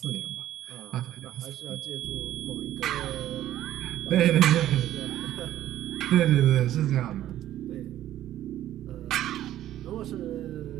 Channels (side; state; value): left; quieter; 12.9 dB